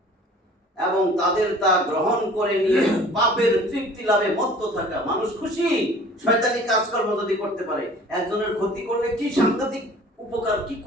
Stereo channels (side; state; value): both; normal; correlation 0.48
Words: এবং তাদের তা গ্রহণ করে নিয়ে পাপের তৃপ্তি লাভে মত্ত থাকা। মানুষ খুশি শয়তানি কাজকর্ম যদি করতে পারে। একজনের ক্ষতি করলে কি সাংঘাতিক উপকার, কি